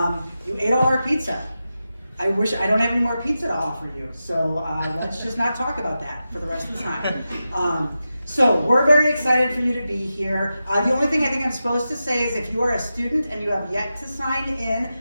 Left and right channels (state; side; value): inverted; both; correlation -0.91